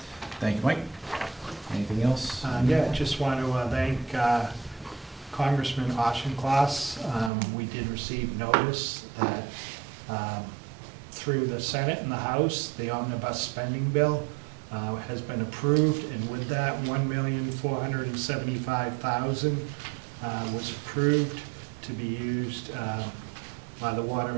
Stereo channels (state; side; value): drops out; left; at 7.3 s